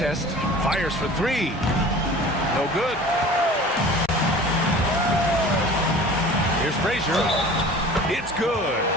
Fires for 3. No good. Here's Frazier. It's good.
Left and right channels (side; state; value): both; normal; correlation 0.42